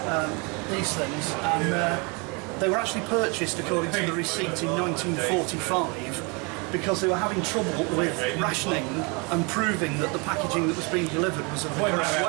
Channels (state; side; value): quieter; left; 30.8 dB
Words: these things, and they were actually purchased, according to the receipt, in 1945 because they were having trouble with rationing and proving that the packaging that was being delivered was of the correct